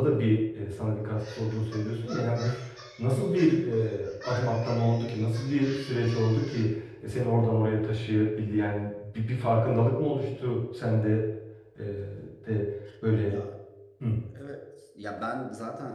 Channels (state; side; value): identical; both; correlation 1.00